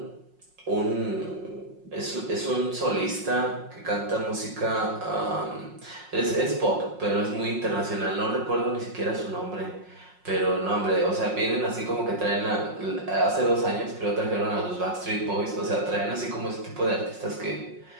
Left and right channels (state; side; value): late; left; 5.5 ms